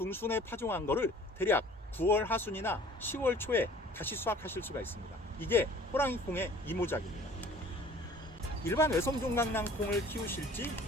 파종한 거를 대략 9월 하순이나 10월 초에 다시 수확하실 수가 있습니다. 이게 호랑이콩의 이모작입니다. 일반 외성종 강낭콩을 키우실지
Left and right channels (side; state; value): both; normal; correlation 0.49